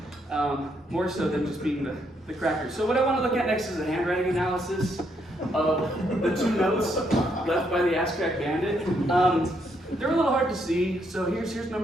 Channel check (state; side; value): normal; both; correlation 0.75